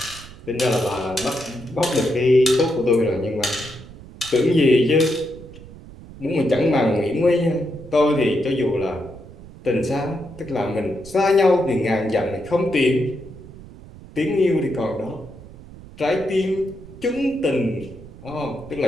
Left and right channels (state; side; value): noise; right; rumble, 17 dB below the sound